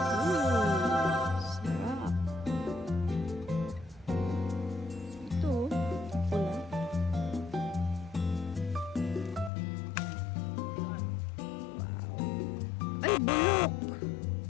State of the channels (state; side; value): drops out; right; at 9.5 s